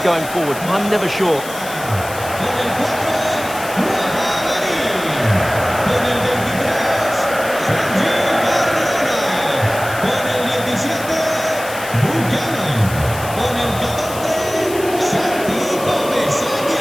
going forward? I'm never sure.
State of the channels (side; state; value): left; noise; hiss, 13 dB below the sound